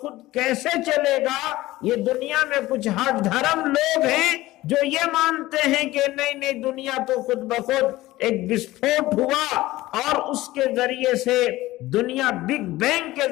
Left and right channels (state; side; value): quieter; right; 17.5 dB